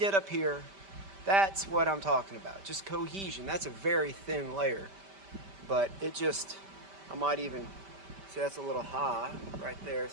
up here? That's what I'm talking about. Just cohesion. That's a very thin layer. But it just, I might even, see that's a little high right there.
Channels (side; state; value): left; late; 5.1 ms